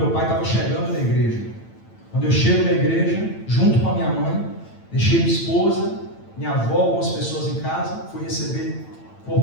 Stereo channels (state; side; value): late; right; 9.0 ms